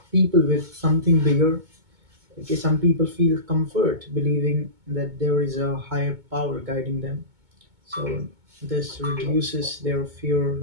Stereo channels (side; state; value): left; late; 2.2 ms